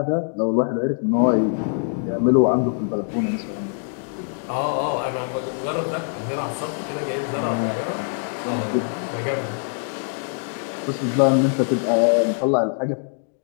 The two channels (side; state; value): right; silent; 63 dB below the other